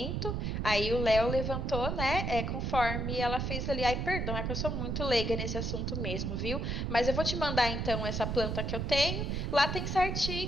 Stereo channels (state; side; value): noise; right; rumble, 1 dB below the sound